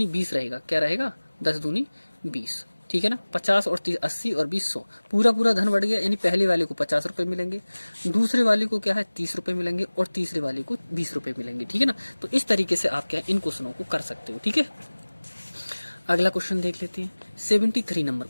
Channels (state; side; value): inverted; both; correlation -1.00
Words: 20 रहेगा। क्या रहेगा, 10 दूनी 20, ठीक है ना। 50 और 30 80 और 20 100, पूरा पूरा धन बढ़ गया। यानी पहले वाले को 50 रुपए मिलेंगे, दूसरे वाले को क्या है 30 रुपए मिलेंगे, और तीसरे वाले को 20 रुपए मिलेंगे, ठीक है ना। तो इस तरीके से आप क्या इन क्वेश्चनों को कर सकते हो, ठीक है। अगला क्वेश्चन देख लेते हैं 73 नंबर